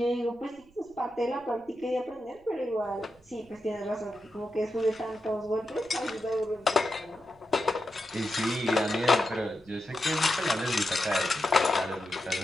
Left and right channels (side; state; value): right; noise; rumble, 29 dB below the sound